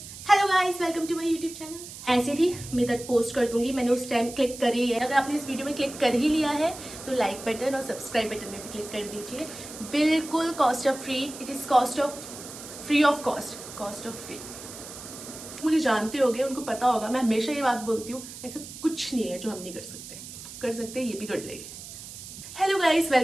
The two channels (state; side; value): noise; right; hiss, 13 dB below the sound